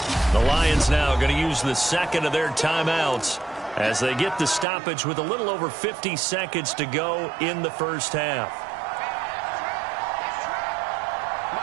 The Lions now going to use the second of their timeouts as they get the stoppage with a little over 50 seconds to go in the first half.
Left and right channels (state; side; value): drops out; left; at 4.7 s